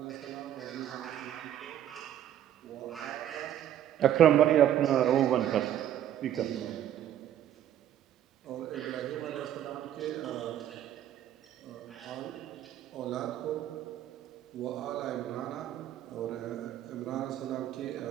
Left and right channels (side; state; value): left; quieter; 11.2 dB